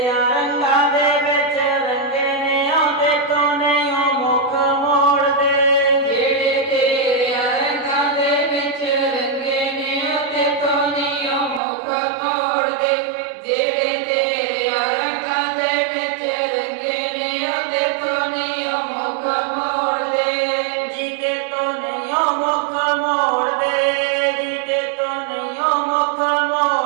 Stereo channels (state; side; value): drops out; left; at 11.6 s